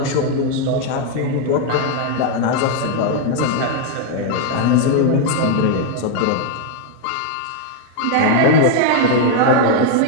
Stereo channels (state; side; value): different; both; correlation 0.00